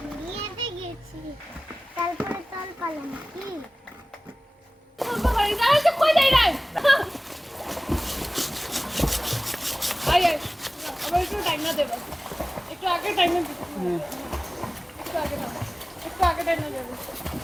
বিয়েতে গেছি তারপরে তল পালাম কি একটু টাইম না দেবো একটু আগে টাইম না দেবো একটু আগে টাইম না দেবো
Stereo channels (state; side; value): normal; both; correlation 0.98